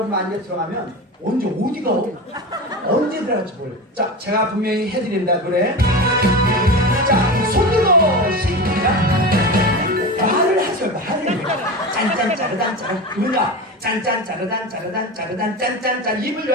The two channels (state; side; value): normal; both; correlation 0.26